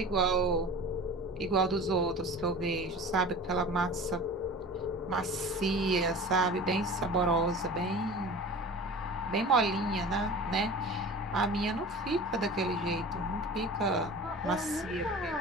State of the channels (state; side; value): normal; both; correlation 0.38